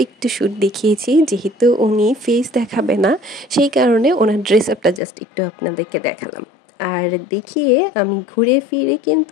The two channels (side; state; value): right; drops out; at 5.0 s